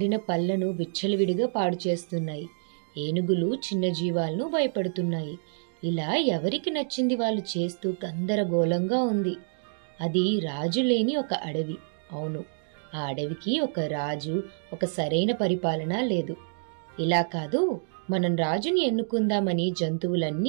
పళ్లను విచ్చలవిడిగా పాడు చేస్తున్నాయి. ఏనుగులు చిన్న జీవాలను భయపడుతున్నాయి. ఇలా ఎవరికి నచ్చింది వాళ్ళు చేస్తూ గందరగోళంగా ఉంది. అది రాజు లేని ఒక అడవి. అవును, ఆ అడవికి ఒక రాజు, ఒక సరైన పరిపాలన లేదు. ఇలా కాదు, మనం రాజుని ఎన్నుకుందామని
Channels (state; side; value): silent; left; digital silence